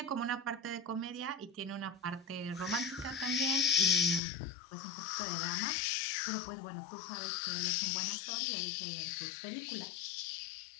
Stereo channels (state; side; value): drops out; right; at 4.2 s